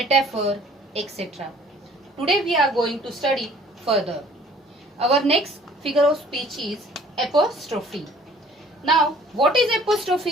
etc. Today we are going to study further. Our next figure of speech is apostrophe. Now, what is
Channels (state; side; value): normal; both; correlation 0.54